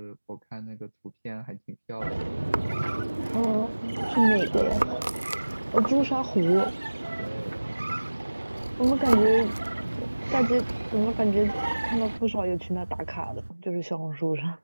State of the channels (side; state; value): both; inverted; correlation -1.00